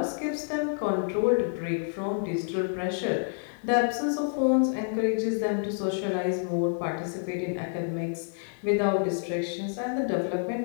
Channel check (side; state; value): right; silent; digital silence